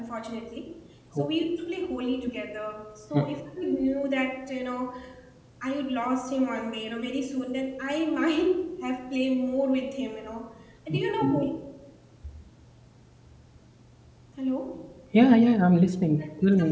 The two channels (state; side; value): identical; both; correlation 1.00